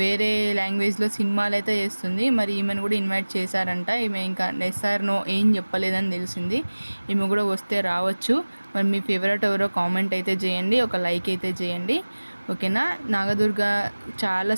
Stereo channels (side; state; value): both; inverted; correlation -1.00